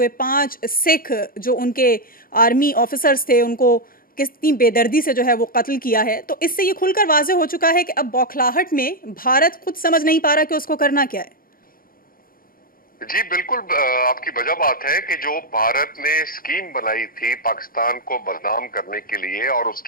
5 سکھ جو ان کے آرمی آفیسرز تھے ان کو کتنی بے دردی سے جو ہے وہ قتل کیا ہے، تو اس سے یہ کھل کر واضح ہو چکا ہے کہ اب بوکھلاہٹ میں بھارت خود سمجھ نہیں پا رہا کہ اس کو کرنا کیا ہے۔ جی بالکل، آپ کی وجہ بات ہے کہ جو بھارت نے اسکیم بنائی تھی پاکستان کو بدنام کرنے کے لیے اور اس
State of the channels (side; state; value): right; late; 0.42 ms